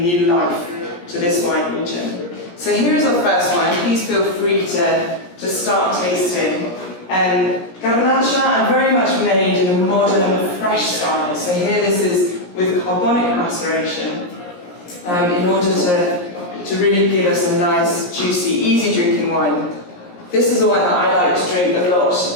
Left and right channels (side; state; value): right; late; 17 ms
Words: new life to this wine region. So here is our first wine. Please feel free to start tasting. Garnacha are very much made in a modern, fresh style. So here this is with carbonic maceration in order to really give us a nice, juicy, easy drinking wine. This is a wine that I like to drink a lot